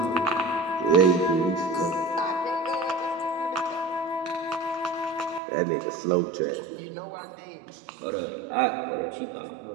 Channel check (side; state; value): left; drops out; at 5.4 s